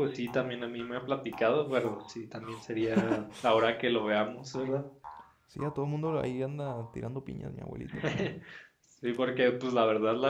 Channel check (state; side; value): identical; both; correlation 1.00